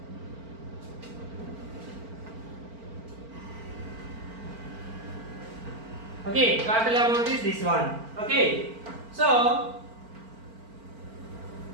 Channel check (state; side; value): late; left; 4.4 ms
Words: Okay, total amount is this one. Okay, so